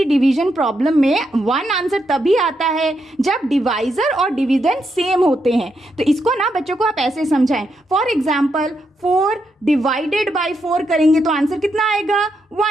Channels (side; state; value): both; normal; correlation 0.81